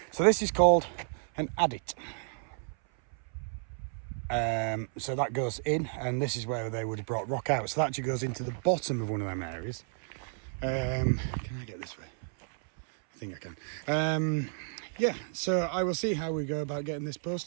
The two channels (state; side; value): silent; left; 57 dB below the other